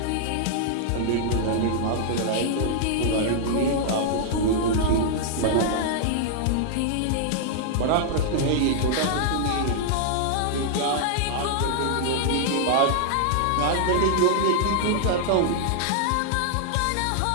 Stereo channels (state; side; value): different; both; correlation -0.01